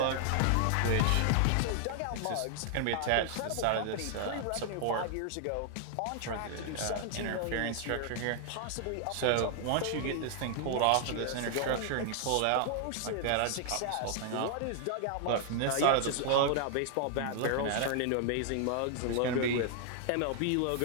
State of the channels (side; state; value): both; different; correlation 0.00